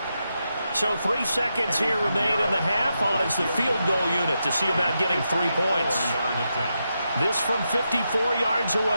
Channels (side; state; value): both; inverted; correlation -0.86